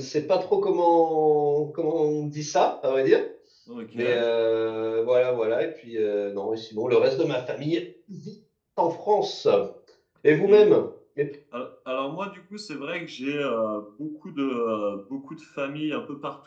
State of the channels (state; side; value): identical; both; correlation 1.00